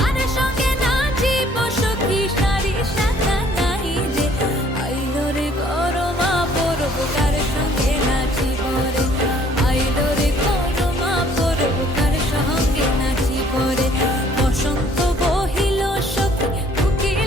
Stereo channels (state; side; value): normal; both; correlation 0.60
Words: সঙ্গে নাচিব সখী সারি শাখা নাই রে। আইলো রে করমা পরব কার সঙ্গে নাচিব রে, আইলো রে করমা পরব কার সঙ্গে নাচিব রে। বসন্ত বহিল সখী